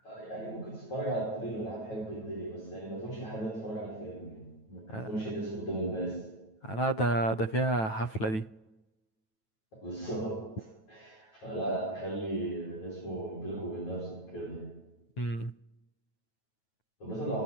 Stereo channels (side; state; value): right; late; 9.2 ms